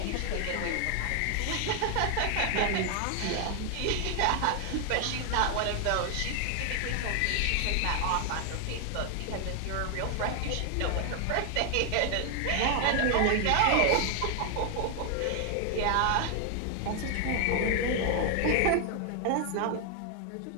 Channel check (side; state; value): both; different; correlation 0.00